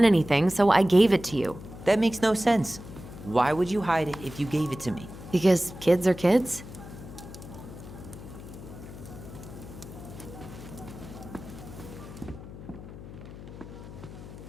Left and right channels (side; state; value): left; noise; hum, 14 dB below the sound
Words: anything, so I gave it to you. That makes no sense. Why would you hide it if you gave it to me? Because kids are kids?